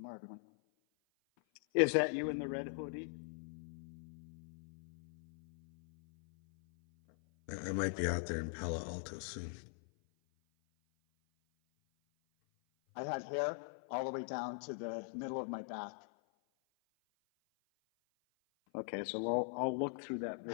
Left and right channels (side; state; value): right; silent; 50 dB below the other